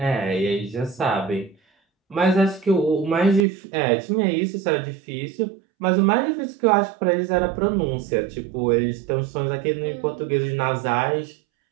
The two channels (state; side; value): drops out; left; at 3.5 s